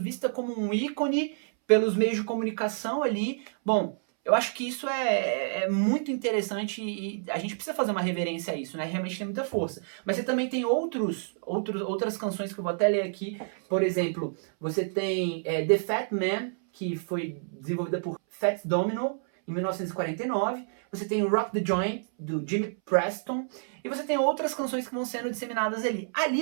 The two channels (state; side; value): silent; left; 59 dB below the other